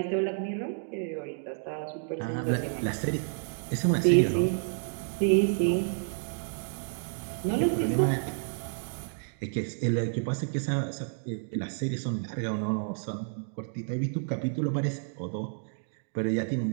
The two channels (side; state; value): left; silent; digital silence